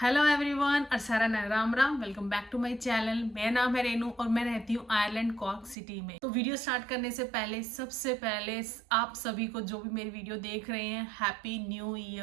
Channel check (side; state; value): left; drops out; at 5.8 s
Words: Hello everyone, अरसारा Ram Ram. Welcome back to my channel. मेरा नाम है रेनू और मैं रहती हूँ आयरलैंड कॉर्क सिटी में। तो वीडियो स्टार्ट करने से पहले सबसे पहले आप सभी को जो भी मेरी वीडियो देख रहे हैं, हैप्पी न्यू